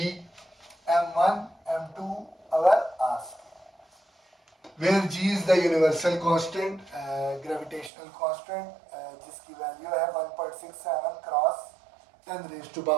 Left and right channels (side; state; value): left; drops out; at 7.9 s